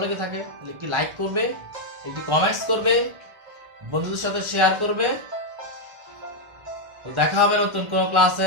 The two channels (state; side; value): late; left; 1.4 ms